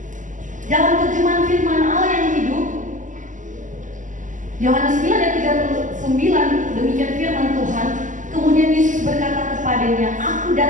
Dalam terjemahan firman Allah yang hidup, Yohanes 9 ayat 39, demikian firman Tuhan. Kemudian Yesus berkata kepadanya, aku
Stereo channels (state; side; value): late; left; 0.37 ms